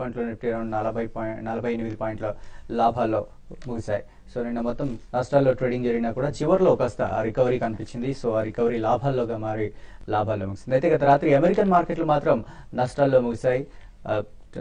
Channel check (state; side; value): identical; both; correlation 1.00